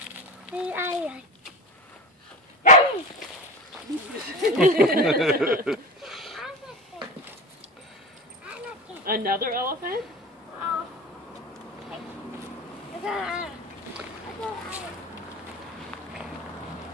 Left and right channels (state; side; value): normal; both; correlation 0.28